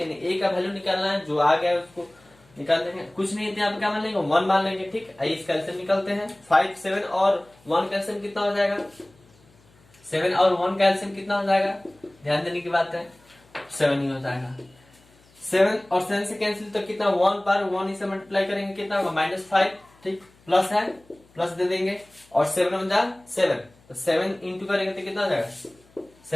a का वैल्यू निकालना है, जो आ गया है उसको निकाल देंगे, कुछ नहीं है यहाँ पे क्या मान लेंगे 1 मान लेंगे, ठीक। आइए इसका एलसीएम निकालते हैं। 5 7 और 1 का एलसीएम कितना हो जाएगा, 7 और 1 का एलसीएम कितना हो जाएगा, ध्यान देने की बात है 7 ही हो जाएगा। 7 और 7 से कैंसिल तो कितना 1 बार 1 से मल्टीप्लाई करेंगे कितना होगा -5, ठीक, प्लस है प्लस दे देंगे, और 7 हो जाए 7, तो 7 इंटू करेंगे तो कितना हो जाएगा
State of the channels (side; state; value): left; noise; hum, 30 dB below the sound